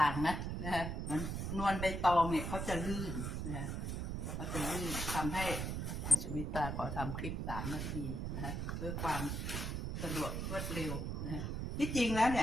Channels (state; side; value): noise; right; rumble, 2 dB below the sound